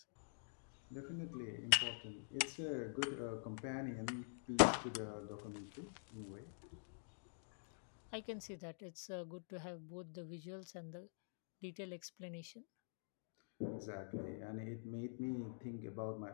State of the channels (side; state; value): right; silent; digital silence